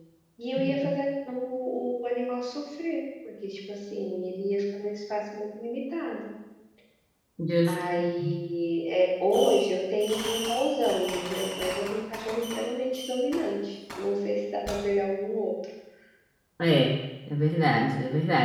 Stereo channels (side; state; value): both; identical; correlation 1.00